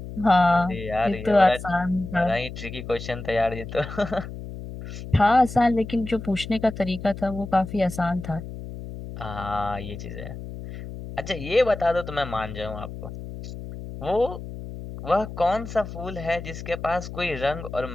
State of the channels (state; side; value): noise; left; hum, 10 dB below the sound